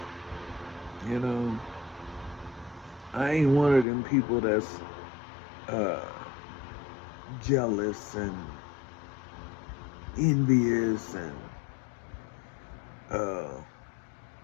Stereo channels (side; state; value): right; drops out; at 3.9 s